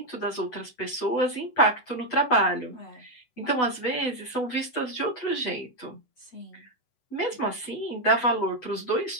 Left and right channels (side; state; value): right; late; 8.0 ms